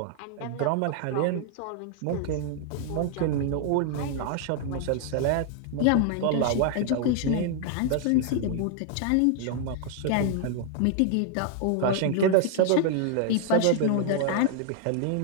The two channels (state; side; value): different; both; correlation 0.00